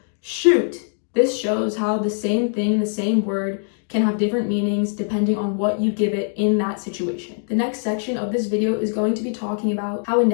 shoot. This shows how the same thing, the same word, can have different meanings depending on what you give it in that situation. The next section of this video is going to be talking about how a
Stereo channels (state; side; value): silent; right; digital silence